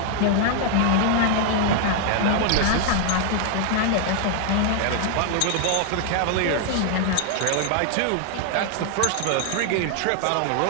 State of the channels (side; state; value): both; different; correlation 0.00